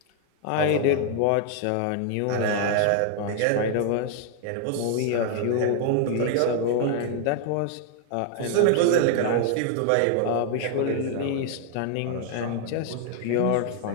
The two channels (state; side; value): different; both; correlation 0.00